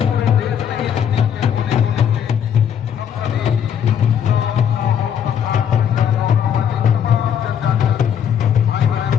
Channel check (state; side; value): quieter; right; 8.6 dB